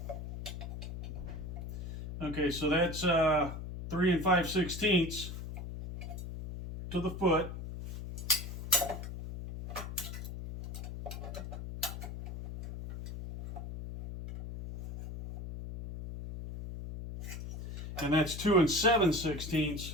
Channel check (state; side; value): noise; left; hum, 8 dB below the sound